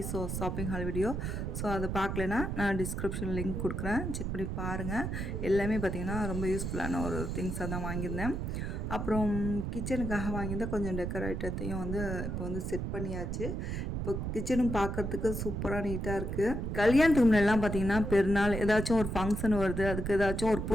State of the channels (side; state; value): right; noise; rumble, 3 dB below the sound